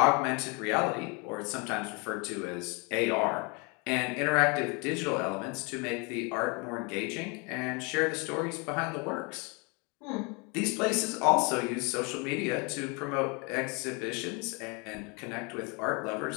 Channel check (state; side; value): quieter; right; 30.9 dB